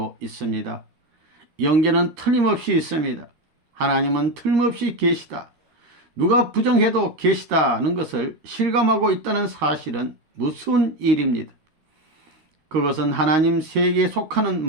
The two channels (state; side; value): late; left; 13 ms